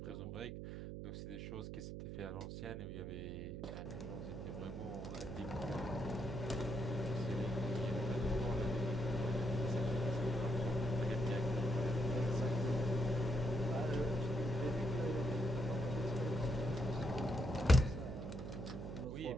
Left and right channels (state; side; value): noise; right; hum, 7 dB below the sound